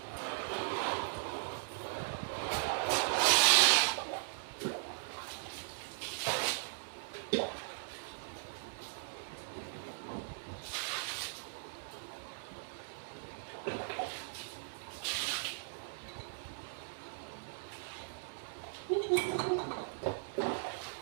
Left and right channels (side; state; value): left; silent; 52 dB below the other